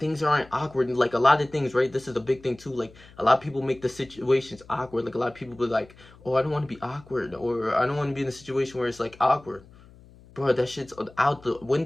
aren't awkward. And like, a lot of things, right? This is a big thing too. Like, a lot of people make the situations awkward. Like, a lot of people be like, oh, I don't want to be awkward, or I don't want to be in a situation where it's like awkward. Bro, that shit's out the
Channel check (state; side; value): noise; left; hum, 24 dB below the sound